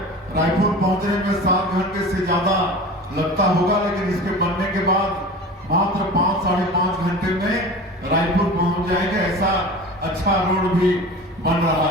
रायपुर पहुंचने में 7 घंटे से ज्यादा लगता होगा, लेकिन इसके बनने के बाद मात्र 5 साढ़े 5 घंटे में रायपुर पहुंच जाएंगे। ऐसा अच्छा रोड भी बन रहा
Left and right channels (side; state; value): both; normal; correlation 0.36